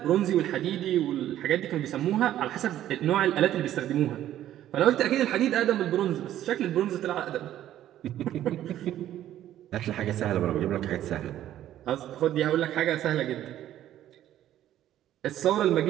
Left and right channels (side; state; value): left; quieter; 12.3 dB